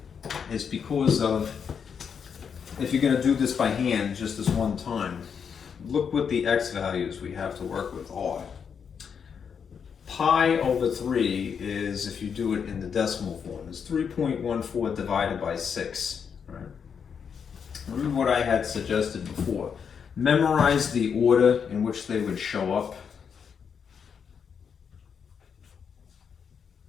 is because of, if you're going to do this by hand just this one time, look what the x values we have to work with are. Pi over 3 is, if you do it in the decimal form, is 3.14 divided by 6. Right? Remember what I had suggested before. Memorize the order in which they would show up.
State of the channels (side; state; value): right; quieter; 6.9 dB